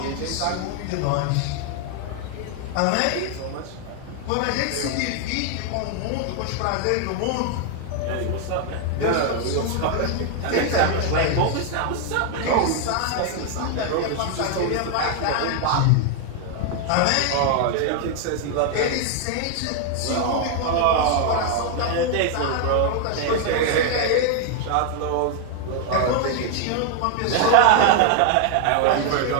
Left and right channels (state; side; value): different; both; correlation 0.00